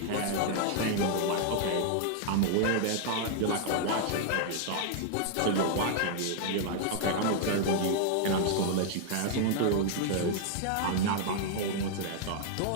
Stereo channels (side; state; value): both; different; correlation -0.01